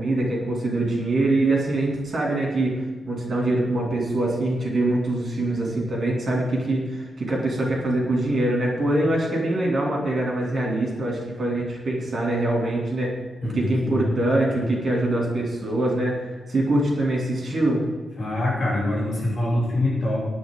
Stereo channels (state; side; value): normal; both; correlation 0.84